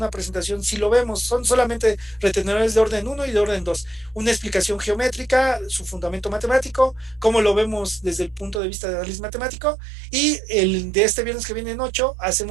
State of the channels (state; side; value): drops out; left; at 8.6 s